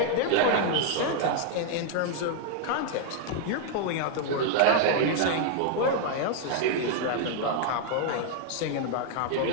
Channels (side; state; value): both; different; correlation 0.00